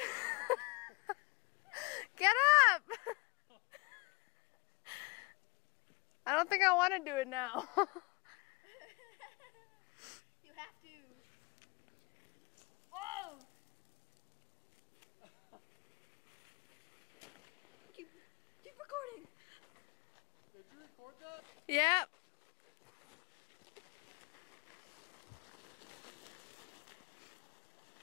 Get up! I don't think I want to do it now. You have to. Oh! Keep recording. Did you record that? Yep.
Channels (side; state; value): right; quieter; 27.1 dB